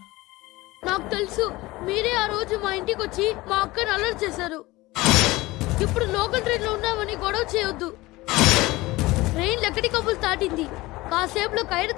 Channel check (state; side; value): quieter; right; 20.1 dB